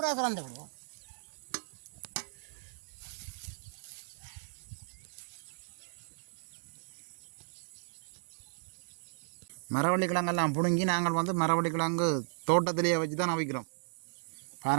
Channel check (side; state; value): left; silent; 54 dB below the other